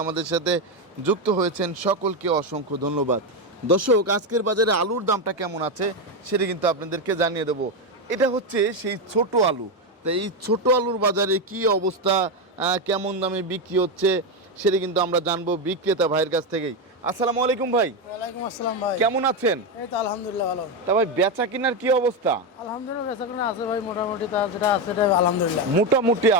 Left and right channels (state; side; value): normal; both; correlation 0.09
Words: আমাদের সাথে যুক্ত হয়েছেন সকলকে অসংখ্য ধন্যবাদ। দর্শক, আজকের বাজারে আলুর দামটা কেমন আছে সেটা কিন্তু আপনাদেরকে জানিয়ে দেবো। এটা হচ্ছে সেই ছোট আলু। তো এই ছোট আলুর বাজারে কি অবস্থা, কেমন দামে বিক্রি হচ্ছে সেটা কিন্তু আমরা জানবো বিক্রেতা ভাইয়ের কাছ থেকেই। আসসালামু আলাইকুম ভাই। ওয়ালাইকুম আসসালাম ভাই। কেমন আছেন? এই তো আলহামদুলিল্লাহ ভালো। তা ভাই, বেচা কিনার কি অবস্থা? আলহামদুলিল্লাহ বেচাকেনা আছে ভাই, মোটামুটি তা যেটা আছে এটা আলহামদুলিল্লাহ। মোটামুটি